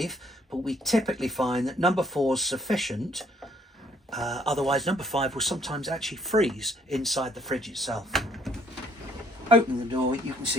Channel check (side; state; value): both; normal; correlation 0.65